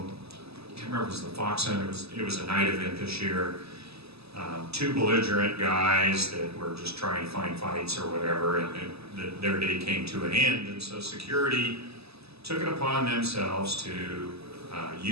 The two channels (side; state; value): left; late; 0.78 ms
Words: I can't remember if it was the Fox Center, it was a night event this year. Two belligerent guys that were just trying to find fights or whatever, and their day came to an end. And so security took it upon themselves to